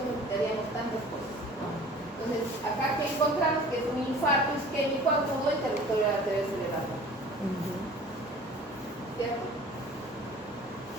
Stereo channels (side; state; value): both; normal; correlation 0.45